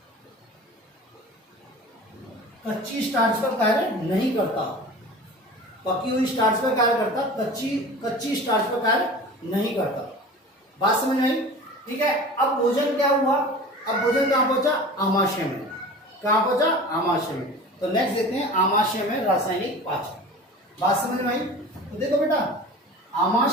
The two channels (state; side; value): normal; both; correlation 0.38